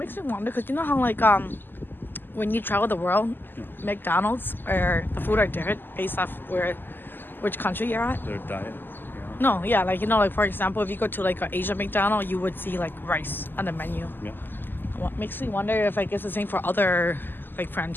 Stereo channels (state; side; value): late; right; 0.093 ms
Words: me wonder because you know how like when you travel the world, McDonald's or the food are different based off which country you're at. Their diet. No, yeah, like you know, like for example, if you go to like an Asian McDonald's, you would see like rice on the menu. Yeah. What makes me wonder if I guess the same for other like